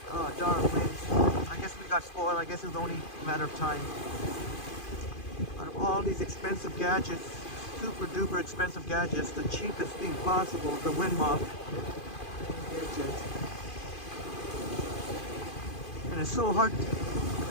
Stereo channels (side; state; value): right; late; 2.5 ms